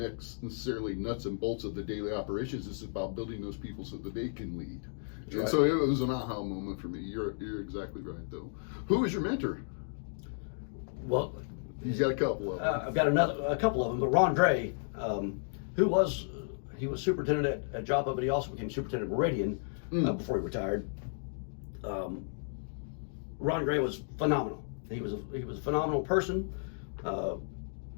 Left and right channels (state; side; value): silent; right; digital silence